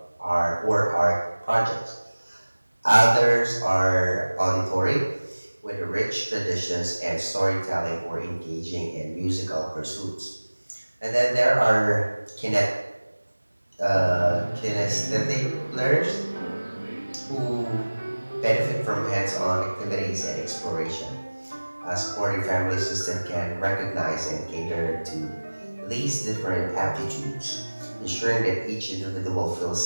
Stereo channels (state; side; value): inverted; both; correlation -1.00